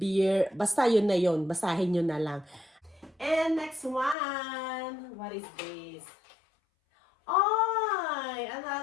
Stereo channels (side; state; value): right; drops out; at 4.2 s